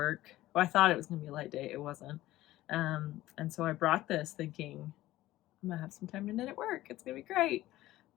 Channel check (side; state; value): right; quieter; 16.0 dB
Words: Well, I thought it was gonna be a light day. It wasn't. And so I brought this thinking I'm gonna have some time to knit at work. It's gonna be great.